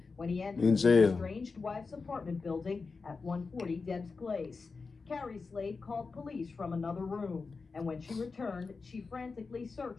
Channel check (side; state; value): right; quieter; 4.4 dB